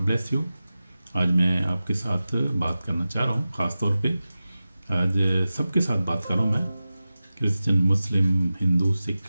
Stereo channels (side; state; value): both; inverted; correlation -0.95